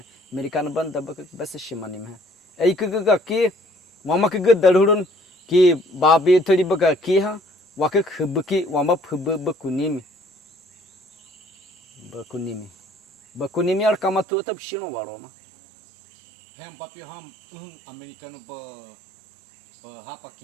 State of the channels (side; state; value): left; drops out; at 14.2 s